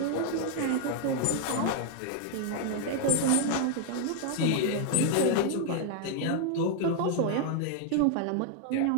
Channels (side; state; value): both; different; correlation 0.00